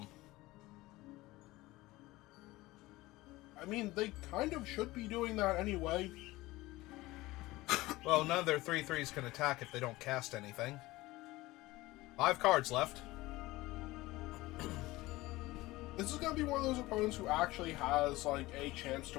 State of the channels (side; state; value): right; quieter; 19.3 dB